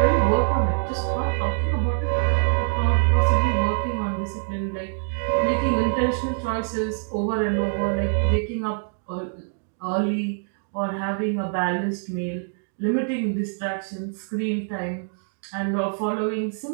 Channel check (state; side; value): silent; left; digital silence